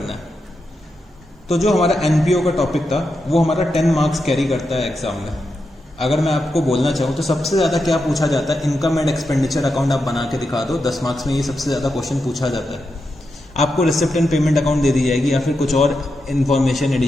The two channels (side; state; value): both; normal; correlation 0.87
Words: है। तो जो हमारा एनपीओ का टॉपिक था वो हमारा 10 मार्क्स कैरी करता है एग्जाम में। अगर मैं आपको बोलना चाहूँ तो सबसे ज़्यादा क्या पूछा जाता है, इनकम एंड एक्सपेंडिचर अकाउंट आप बना के दिखा दो, 10 मार्क्स में ये सबसे ज़्यादा क्वेश्चन पूछा जाता है। आपको रिसिप्ट एंड पेमेंट अकाउंट दे दी जाएगी या फिर कुछ और इन्फॉर्मेशन,